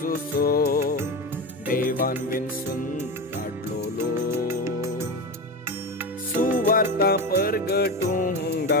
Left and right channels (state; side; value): normal; both; correlation 0.21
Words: देवान विन्सून काडलोलो सुवार्ता परगटूंक